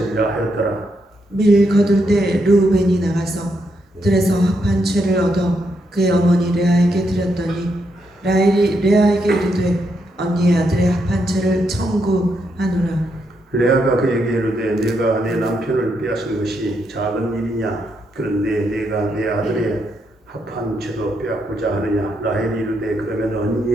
하였더라. 밀 거둘 때 르우벤이 나가서 들에서 합한 채를 얻어 그의 어머니 레아에게 드렸더니 라헬이 레아에게 이르되 언니의 아들의 합한 채를 청구하노라. 레아가 그에게 이르되 내가 내 남편을 빼앗은 것이 작은 일이냐. 그런데 내가 내 아들의 합한 채도 빼앗고자 하느냐. 라헬이 이르되 그러면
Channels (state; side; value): normal; both; correlation 0.79